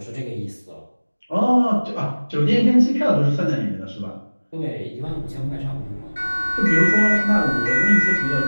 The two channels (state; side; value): inverted; both; correlation -1.00